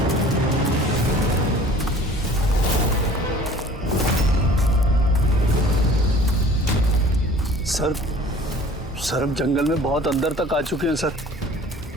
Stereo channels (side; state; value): both; normal; correlation 0.48